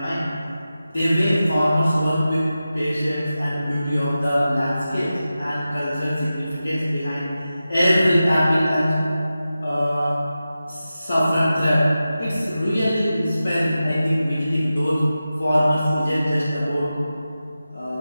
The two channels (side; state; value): both; inverted; correlation -0.93